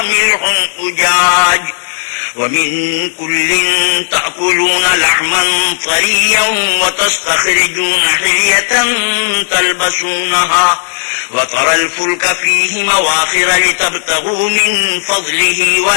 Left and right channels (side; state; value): right; silent; digital silence